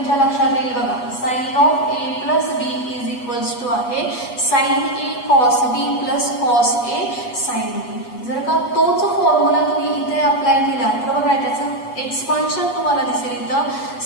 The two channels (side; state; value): right; late; 8.2 ms